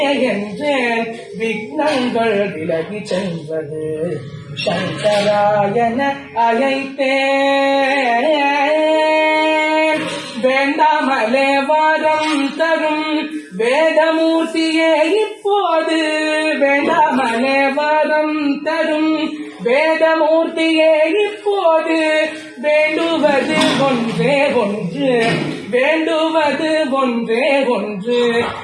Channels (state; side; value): identical; both; correlation 1.00